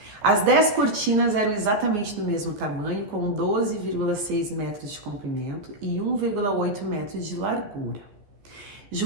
As 10 cortinas eram exatamente do mesmo tamanho, com 12,6 metros de comprimento e 1,8 metros de largura.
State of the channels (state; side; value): late; left; 14 ms